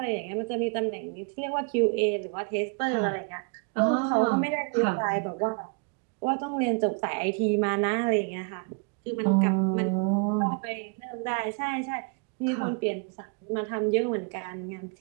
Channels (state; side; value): quieter; left; 36.4 dB